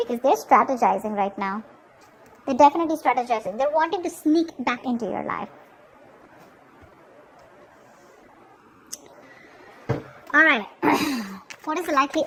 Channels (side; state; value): both; identical; correlation 1.00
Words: they're strategizing right now. They're definitely strategizing. They're wanting to sneak back into your life. Alright, what is the likely